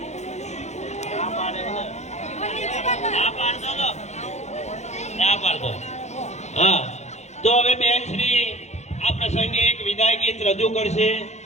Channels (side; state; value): right; late; 0.33 ms